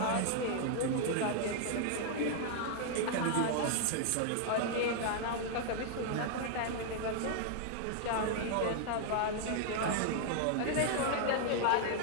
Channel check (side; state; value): both; different; correlation 0.00